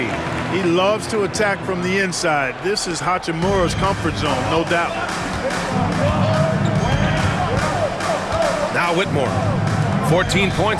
He loves to attack from the inside. This is Hachimura's comfort zone, no doubt. Now Whitmore. 14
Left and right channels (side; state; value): both; identical; correlation 1.00